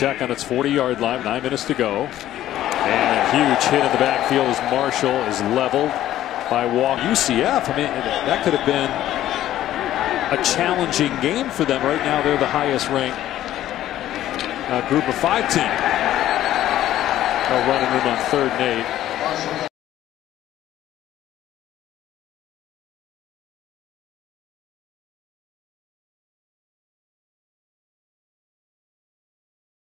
on its 40-yard line. 9 minutes to go. And a huge hit in the backfield as Marshall is leveled by Walker. UCF, I mean, that could have been a challenging game for them. Right now, they're the highest ranked group of 5 team. They'll run it in on 3rd and 8.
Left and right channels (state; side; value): quieter; right; 13.1 dB